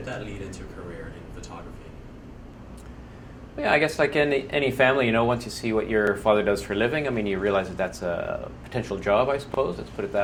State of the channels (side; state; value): both; identical; correlation 1.00